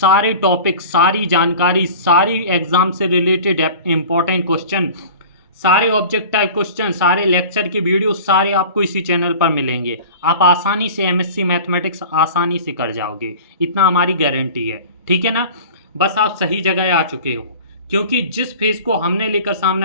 टॉपिक, सारी जानकारी, सारी एग्ज़ाम से रिलेटेड इम्पॉर्टेंट क्वेश्चन, सारे ऑब्जेक्ट टाइप क्वेश्चन, सारे लेक्चर के वीडियो सारे आपको इसी चैनल पर मिलेंगे। आप आसानी से एमएससी मैथमेटिक्स आसानी से कर जाओगे, इतना हमारी गारंटी है। ठीक है ना। बस आप सही जगह आ चुके हो, क्योंकि जिस फेज़ को हमने लेकर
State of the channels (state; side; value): inverted; both; correlation -0.39